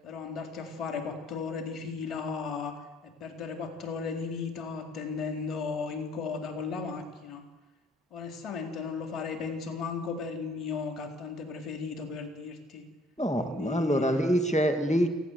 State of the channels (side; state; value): both; normal; correlation 0.61